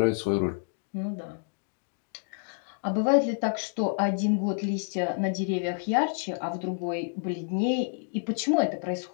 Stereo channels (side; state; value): right; silent; 59 dB below the other